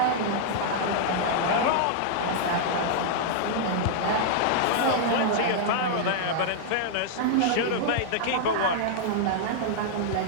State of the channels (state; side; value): different; both; correlation -0.01